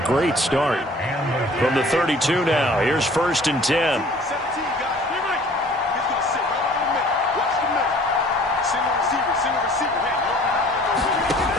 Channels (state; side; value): normal; both; correlation 0.51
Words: great start. From the 32 now, here's 1st and 10.